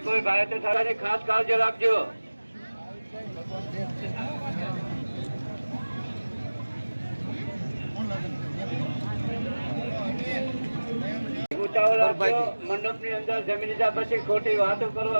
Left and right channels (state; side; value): inverted; both; correlation -1.00